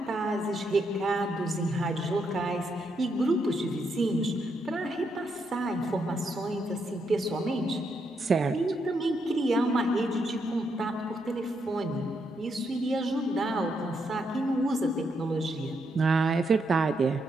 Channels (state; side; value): normal; both; correlation 0.79